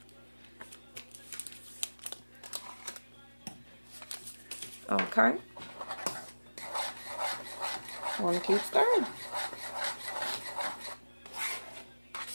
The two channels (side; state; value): both; inverted; correlation -1.00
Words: Okay. I want to keep stirring.